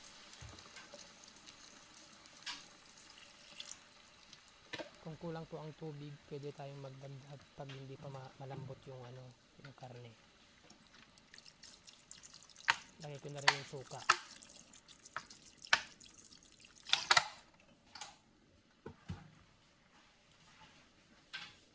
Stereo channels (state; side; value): identical; both; correlation 1.00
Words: Kung kulang po ang tubig, pwede tayong magdagdag pag hindi pa malambot yung yung karne. Lagay ko na rin yung suka.